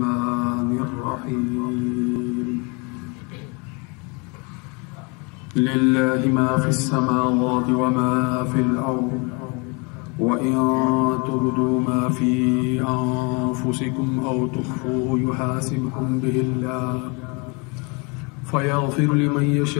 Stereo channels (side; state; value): right; quieter; 31.0 dB